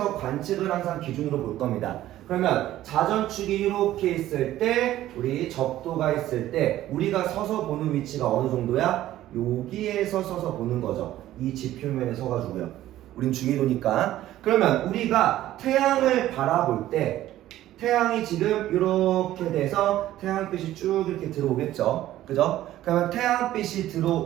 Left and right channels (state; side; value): quieter; left; 13.9 dB